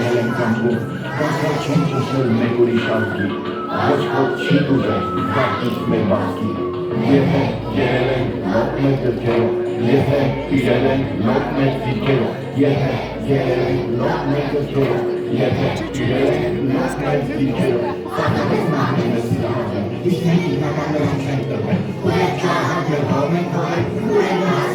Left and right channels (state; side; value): identical; both; correlation 1.00